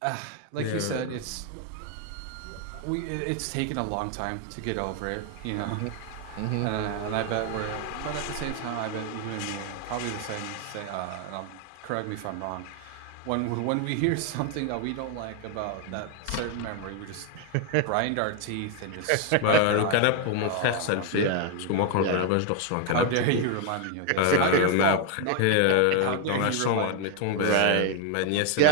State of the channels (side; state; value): both; different; correlation 0.01